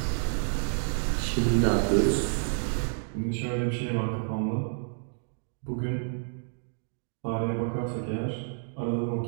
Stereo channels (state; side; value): silent; left; digital silence